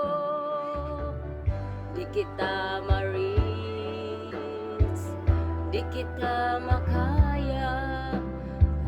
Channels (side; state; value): both; identical; correlation 1.00